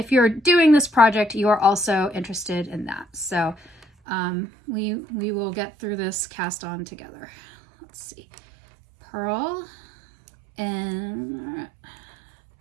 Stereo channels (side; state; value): left; drops out; at 3.9 s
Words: you're doing this project, you are also interested in that. So we will get through this cast on together. Let's see. Purl and